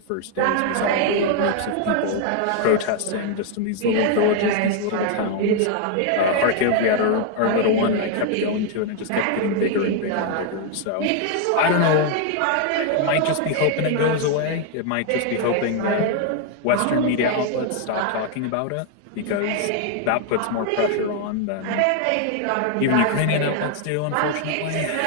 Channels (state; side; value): different; both; correlation 0.00